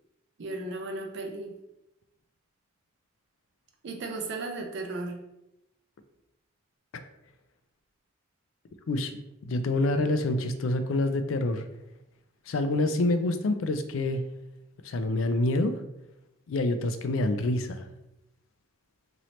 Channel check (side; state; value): both; normal; correlation 0.51